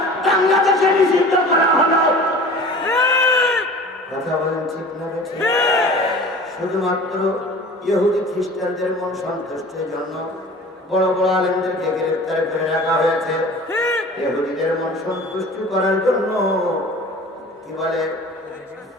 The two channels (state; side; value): normal; both; correlation 0.41